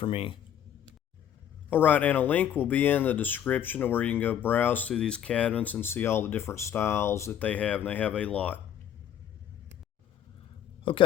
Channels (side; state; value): right; quieter; 10.0 dB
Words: me. Alright, and a link will be in the description where you can go browse through these cabinets and see all the different styles that they have, and they have a lot.